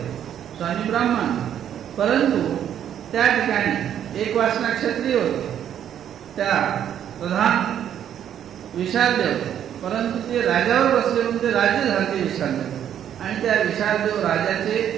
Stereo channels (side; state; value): left; quieter; 9.9 dB